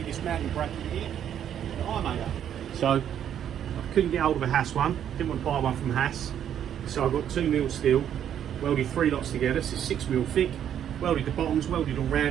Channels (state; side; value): quieter; left; 9.7 dB